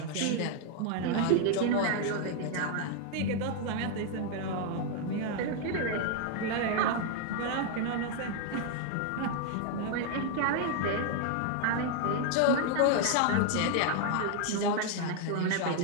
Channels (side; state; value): both; different; correlation 0.00